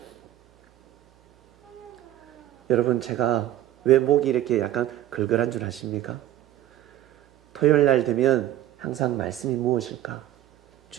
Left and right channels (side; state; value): left; quieter; 13.1 dB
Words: 여러분, 제가 왜 목이 이렇게 약간 걸걸한 줄 아십니까? 토요일 날 되면 항상 말씀이 무엇일까?